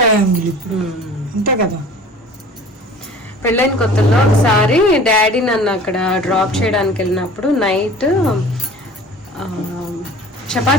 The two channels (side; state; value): both; normal; correlation 0.44